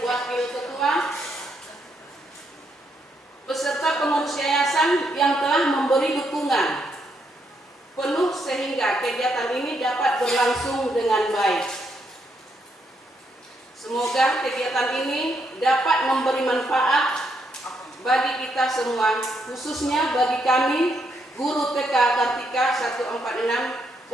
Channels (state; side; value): normal; both; correlation 0.77